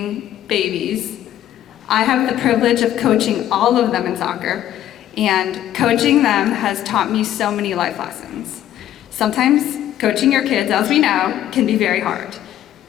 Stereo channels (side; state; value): right; quieter; 12.0 dB